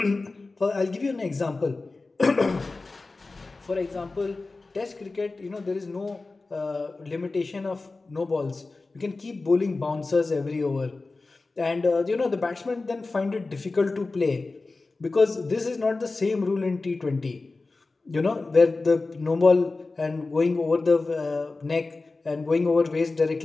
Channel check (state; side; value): quieter; right; 3.5 dB